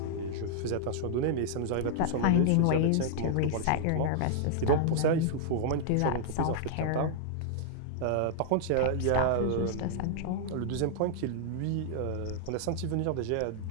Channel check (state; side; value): different; both; correlation -0.01